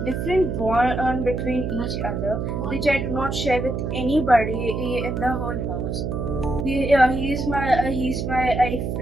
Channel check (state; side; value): noise; right; hum, 2 dB below the sound